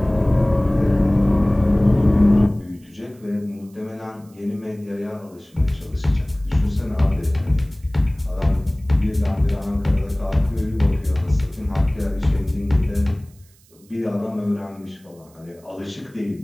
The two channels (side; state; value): right; noise; hiss, 30 dB below the sound